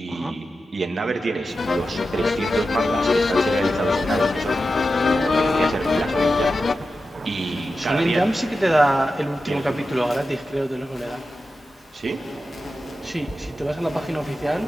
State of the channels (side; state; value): both; normal; correlation 0.91